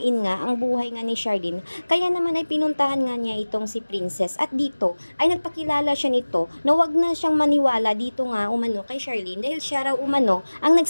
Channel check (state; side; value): inverted; both; correlation -1.00